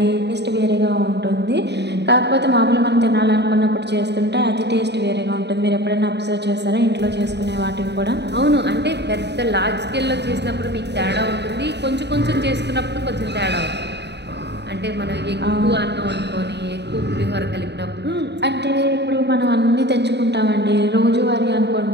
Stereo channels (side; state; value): left; late; 0.50 ms